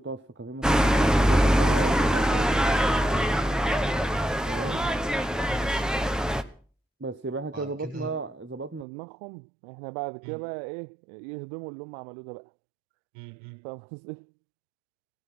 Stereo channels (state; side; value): drops out; left; at 8.8 s